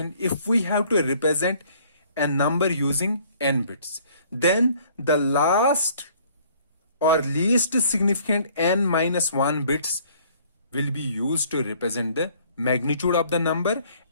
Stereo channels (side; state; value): both; inverted; correlation -0.58